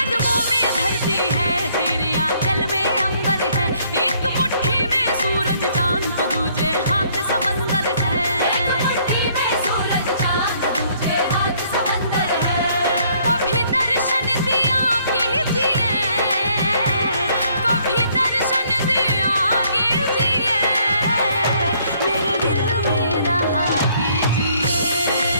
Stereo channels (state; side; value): inverted; both; correlation -0.65